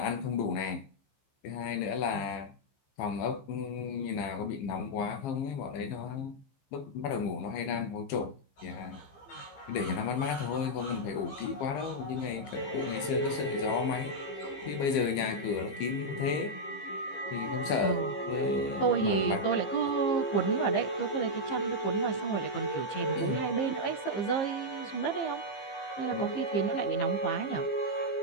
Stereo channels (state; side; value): late; right; 15 ms